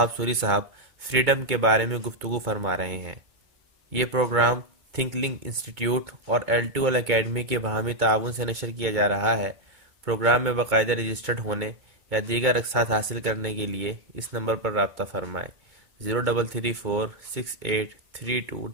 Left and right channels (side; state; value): left; late; 2.2 ms